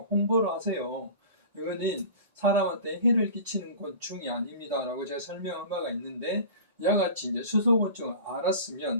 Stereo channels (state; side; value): inverted; both; correlation -0.38